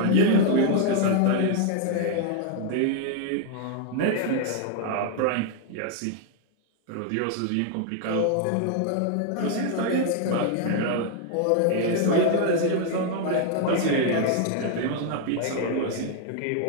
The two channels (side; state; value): both; different; correlation 0.00